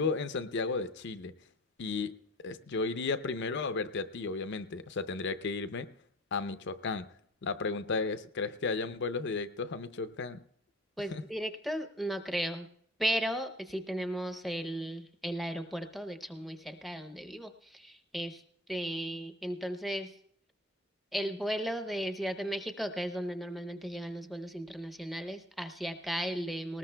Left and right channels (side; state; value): both; normal; correlation 0.43